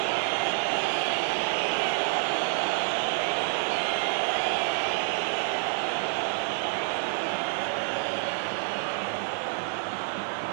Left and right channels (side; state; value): left; silent; 59 dB below the other